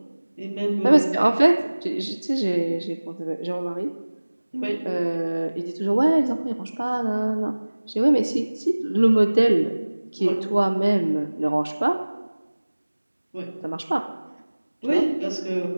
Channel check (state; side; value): inverted; both; correlation -1.00